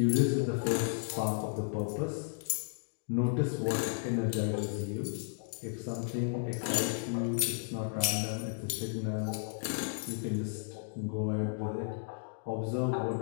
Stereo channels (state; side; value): silent; right; digital silence